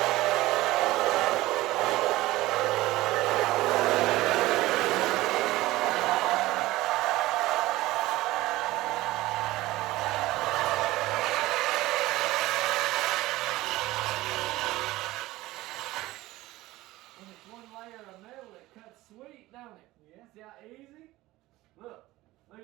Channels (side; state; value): left; quieter; 17.9 dB